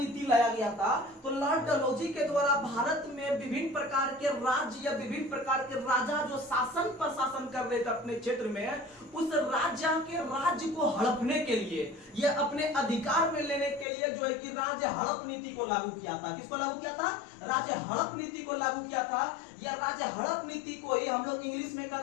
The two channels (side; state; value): right; drops out; at 13.9 s